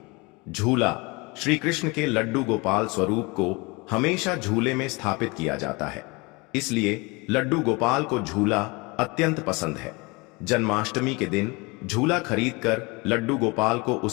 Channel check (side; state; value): right; quieter; 26.5 dB